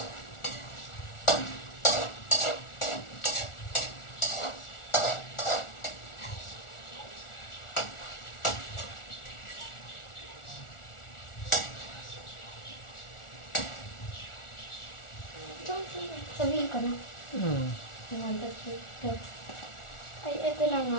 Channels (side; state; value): right; late; 1.4 ms